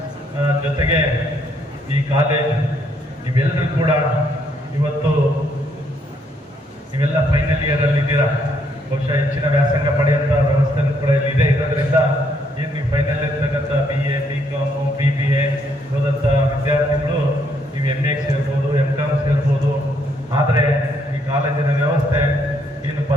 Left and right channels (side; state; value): both; normal; correlation 0.72